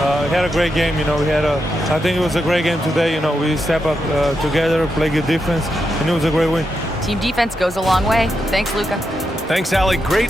great game. You know, I think it was a great game today. You know, we step up together, play good defense, and it was a great win. Team defense goes a long way. Thanks, Luka. Thanks, Allie.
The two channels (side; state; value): both; normal; correlation 0.85